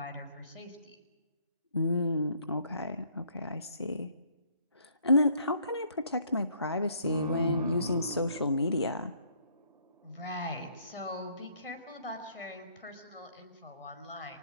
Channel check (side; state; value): both; inverted; correlation -0.64